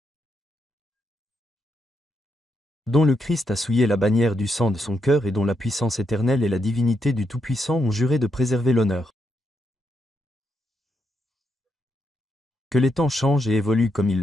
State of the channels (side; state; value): both; normal; correlation 0.80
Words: Dont le Christ a souillé la bannière du sang de son cœur et dont la puissance éternelle et la divinité du Tout-Puissant ont juré de préserver l'honneur. Que les temps changent et évoluent comme ils